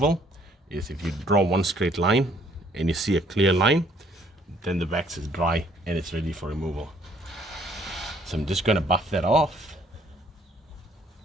is if you draw one straight line and you see a clear line, then the wax is dry and it's ready for removal. So I'm just going to buff that off.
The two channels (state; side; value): normal; both; correlation 0.63